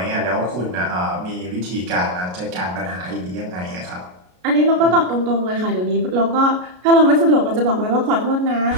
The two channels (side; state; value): left; late; 33 ms